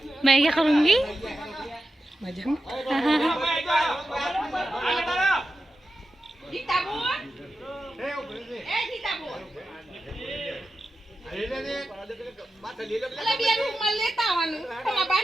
मैं क्या करूँगी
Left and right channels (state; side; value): normal; both; correlation 0.91